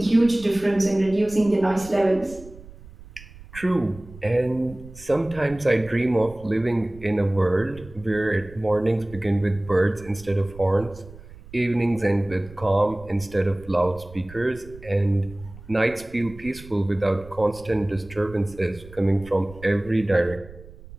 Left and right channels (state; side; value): noise; right; rumble, 18 dB below the sound